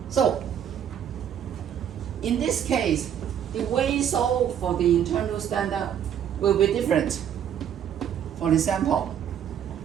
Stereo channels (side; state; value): left; quieter; 9.3 dB